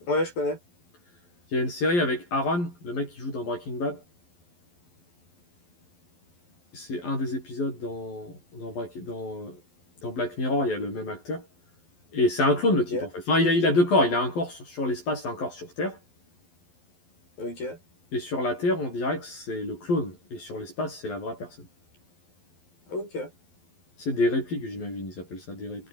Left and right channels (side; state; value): right; late; 11 ms